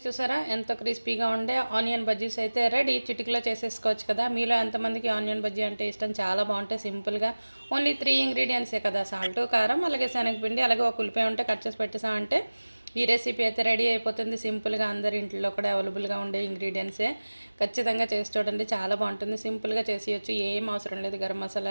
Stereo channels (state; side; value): inverted; both; correlation -1.00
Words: చూసారా ఎంతో క్రిస్పీగా ఉండే ఆనియన్ బజ్జీస్ అయితే రెడీ. చిటికలో చేసేసుకోవచ్చు కదా. మీలో ఎంతమందికి ఆనియన్ బజ్జీ అంటే ఇష్టం, చాలా బాగుంటాయి సింపుల్గా. ఓన్లీ 3 ఇంగ్రీడియంట్సే కదా, సాల్ట్, కారం, అలాగే శనగపిండి, అలాగే ఒక ఉల్లిపాయ ఉంటే కట్ చేసి పెట్టేసామంటే ఈ రెసిపీ అయితే రెడీ అయిపోతుంది. సింపుల్గా అందరి ఇంట్లో కూడా అవైలబుల్గా ఉండే ఇంగ్రీడియంట్సే. ఖచ్చితంగా చేసి చూడండి, చాలా బాగుంటుంది. సింపుల్గా చేసేయచ్చు, ఏం అవసరం లేదు. గరం